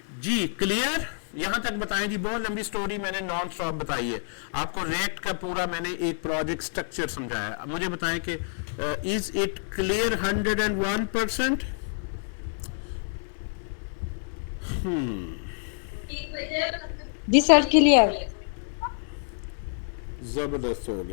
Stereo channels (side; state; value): right; silent; 60 dB below the other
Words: जी। क्लियर? यहां तक बताएं जी। बहुत लंबी स्टोरी मैंने नॉन स्टॉप बताई है आपको। रिएक्ट का पूरा मैंने एक प्रोजेक्ट स्ट्रक्चर समझाया। मुझे बताएं कि इज इट क्लियर 101%? जी सर क्लियर। जबरदस्त हो